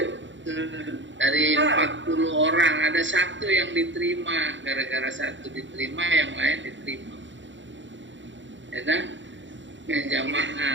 Dari 40 orang ada satu yang diterima, gara-gara satu diterima yang lain diterima. Ya kan? Yang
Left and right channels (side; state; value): left; late; 0.54 ms